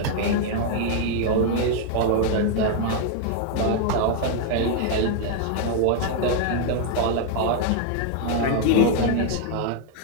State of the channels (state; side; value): different; both; correlation 0.00